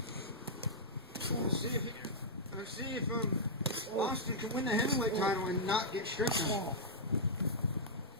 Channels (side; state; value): both; normal; correlation -0.10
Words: Let's see if Austin can win the heavyweight title and not get stripped of it.